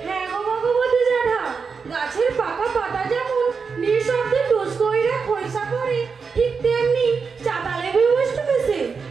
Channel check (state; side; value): quieter; left; 5.4 dB